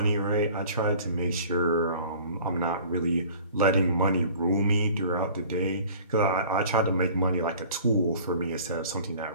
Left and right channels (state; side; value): inverted; both; correlation -0.47